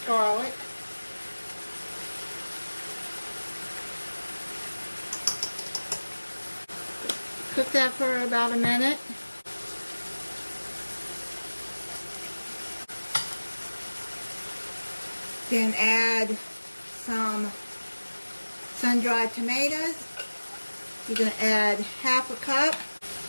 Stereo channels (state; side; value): inverted; both; correlation -1.00